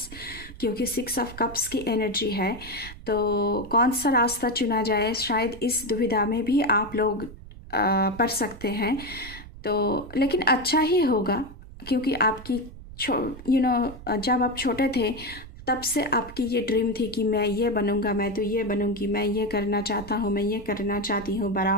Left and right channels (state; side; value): noise; right; rumble, 16 dB below the sound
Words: क्योंकि 6 ऑफ कप्स की एनर्जी है। तो कौन सा रास्ता चुना जाए, शायद इस दुविधा में भी आप लोग पड़ सकते हैं। तो लेकिन अच्छा ही होगा, क्योंकि आपकी जब आप छोटे थे तब से आपकी ये ड्रीम थी कि मैं ये बनूंगा, मैं तो ये बनूंगी, मैं ये करना चाहता हूँ, मैं ये करना चाहती हूँ बड़ा